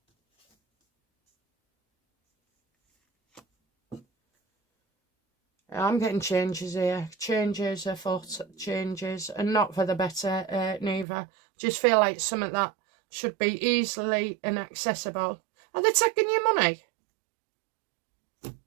I'm getting changes here. Changes afoot, changes, and not for the better, neither. Just feel like some of that should be easily and accessible. Are they taking your money?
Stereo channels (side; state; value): left; drops out; at 11.1 s